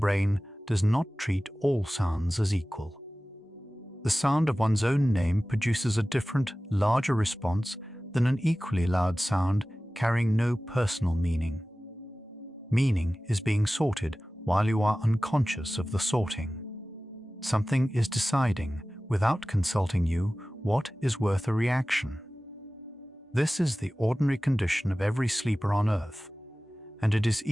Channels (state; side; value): normal; both; correlation 0.97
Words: does not treat all sounds as equal. The sound of one's own name produces a different, larger response than an equally loud sound carrying no personal meaning. Meaning is being sorted while you are unconscious of the sorting. Something is deciding, without consulting you, what is worth a reaction. This is the ordinary condition of every sleeper on Earth, and it is